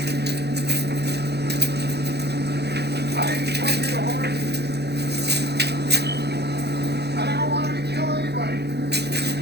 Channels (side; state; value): left; late; 0.48 ms